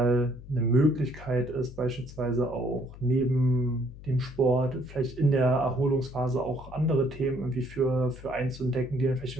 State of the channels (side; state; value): left; noise; hum, 16 dB below the sound